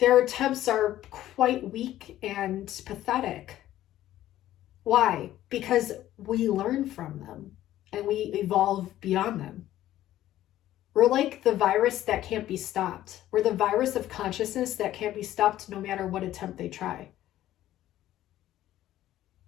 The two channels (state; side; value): quieter; right; 13.5 dB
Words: attempts are quite weak and pathetic. Why? Because we learn from them and we evolve beyond them. We're like the virus that can't be stopped. We're the virus of consciousness that can't be stopped no matter what attempt they try.